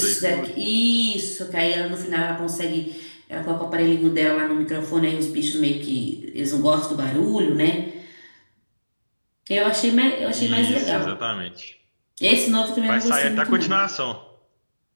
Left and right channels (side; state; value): both; inverted; correlation -1.00